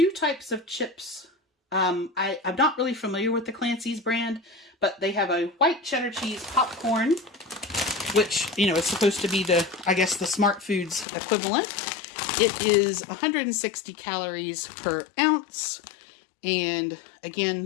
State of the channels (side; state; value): right; drops out; at 11.1 s